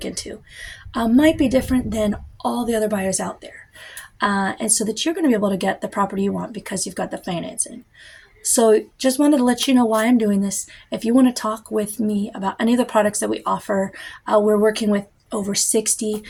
into might be different than all the other buyers out there. And so that you're going to be able to get the property you want because you've got the financing. So just wanted to let you know why I'm doing this. If you want to talk with me about any of the products that we offer, we're working with over 60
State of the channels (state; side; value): identical; both; correlation 1.00